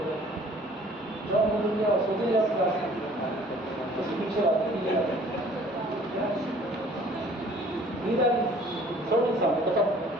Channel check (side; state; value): both; normal; correlation 0.53